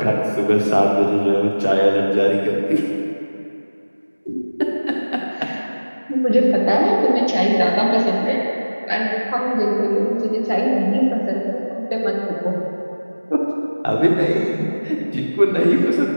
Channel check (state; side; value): inverted; both; correlation -1.00